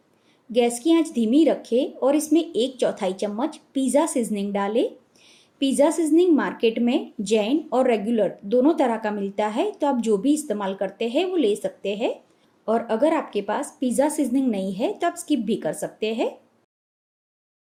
गैस की आंच धीमी रखें और इसमें 1/4 चम्मच पिज़्ज़ा सीजनिंग डालें। पिज़्ज़ा सीजनिंग मार्केट में जैन और रेगुलर दोनों तरह का मिलता है, तो आप जो भी इस्तेमाल करते हैं वो ले सकते हैं। और अगर आपके पास पिज़्ज़ा सीजनिंग नहीं है तो आप स्किप भी कर सकते हैं।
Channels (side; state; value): both; identical; correlation 1.00